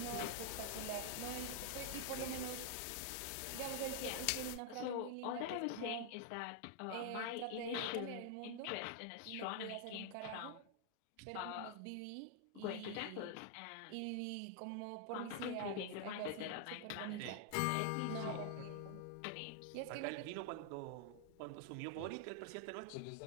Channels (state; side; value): different; both; correlation 0.00